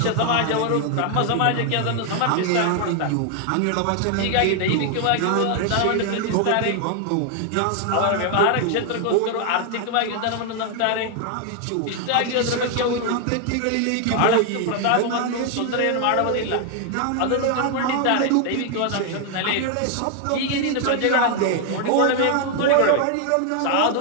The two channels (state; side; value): different; both; correlation 0.00